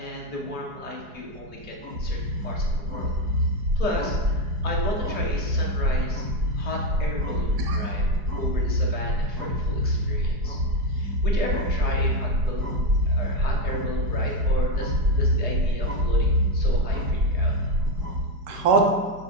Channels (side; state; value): left; late; 4.8 ms